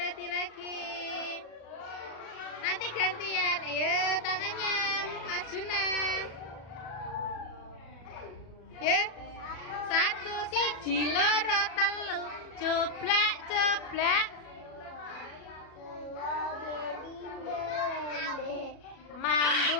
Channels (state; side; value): late; right; 37 ms